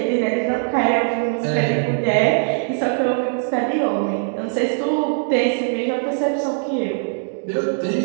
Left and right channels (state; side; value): silent; left; 65 dB below the other